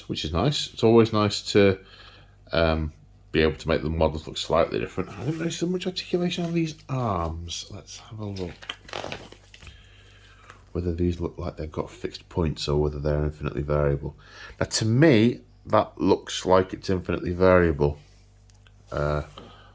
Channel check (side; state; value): both; identical; correlation 1.00